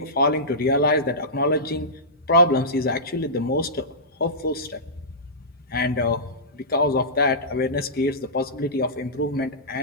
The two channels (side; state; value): both; normal; correlation -0.18